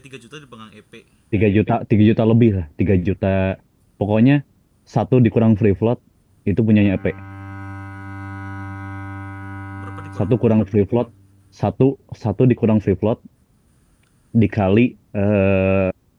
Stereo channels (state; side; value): identical; both; correlation 1.00